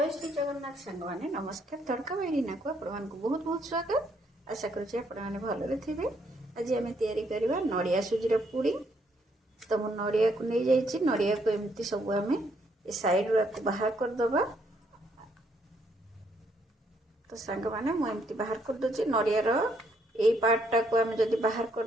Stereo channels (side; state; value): both; normal; correlation 0.71